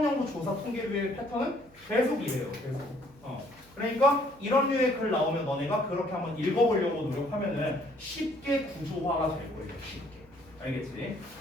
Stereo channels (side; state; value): right; noise; hum, 27 dB below the sound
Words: 조사 통계류의 패턴은 계속 이래요. 계속. 그러니까 이런 류의 글 나오면 너네가 그렇게 한번 읽어보려고 노력하면은 쉽게 구조화가 될 거예요. 쉽게. 알겠지?